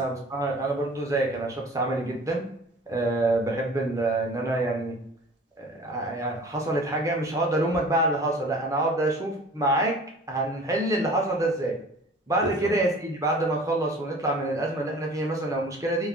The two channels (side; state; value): both; normal; correlation 0.45